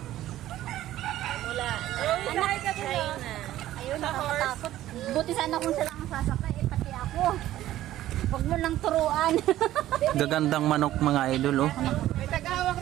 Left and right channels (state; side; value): quieter; left; 13.9 dB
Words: Mula Anak, China. ayun, nakakatakot. Buti sana kung sila ang sasakay, eh, pati ako. Huwag mo lang turuan. Gagandang manok mga idol oh. May tagahawak